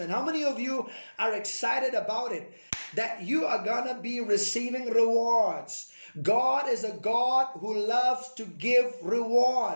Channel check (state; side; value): inverted; both; correlation -1.00